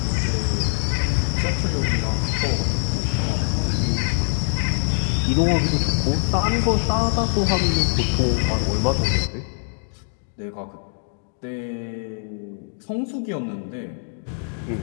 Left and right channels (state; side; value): silent; right; digital silence